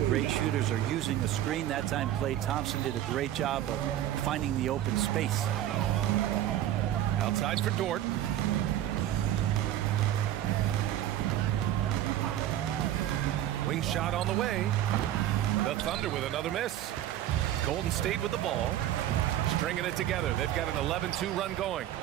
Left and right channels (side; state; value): left; quieter; 12.4 dB